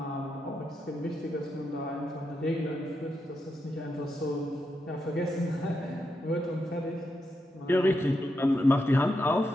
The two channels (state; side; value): normal; both; correlation 0.84